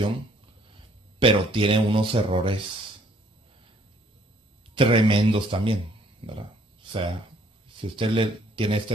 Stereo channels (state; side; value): normal; both; correlation 0.63